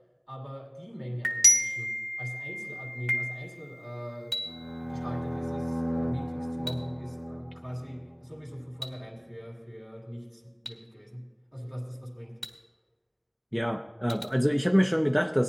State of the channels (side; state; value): both; identical; correlation 1.00